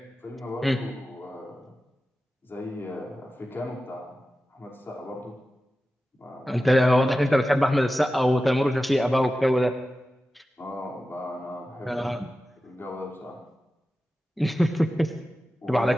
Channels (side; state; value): both; normal; correlation 0.94